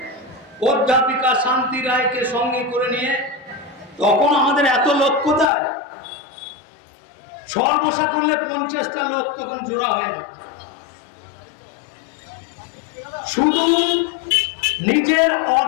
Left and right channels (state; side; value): drops out; right; at 5.5 s